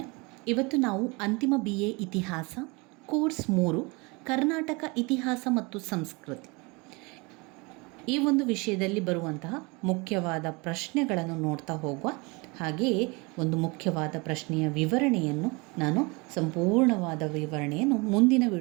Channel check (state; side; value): quieter; left; 27.4 dB